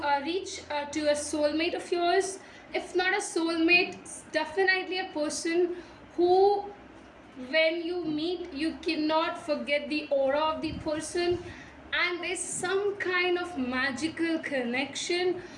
reach to a soulmate of yours. If not a soulmate, definitely a person who, when you meet, you cannot forget the aura of the person, and there's some kind of magical connection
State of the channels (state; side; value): identical; both; correlation 1.00